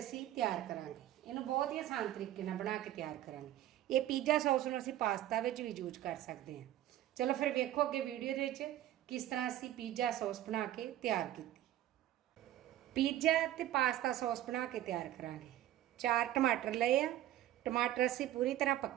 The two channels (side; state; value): left; quieter; 13.3 dB